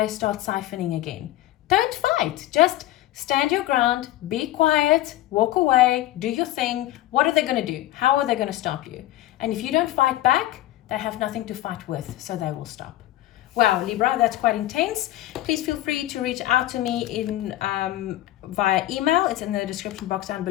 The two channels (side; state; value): right; quieter; 15.0 dB